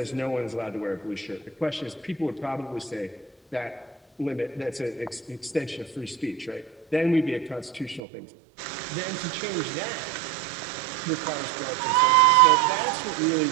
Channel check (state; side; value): drops out; left; at 8.0 s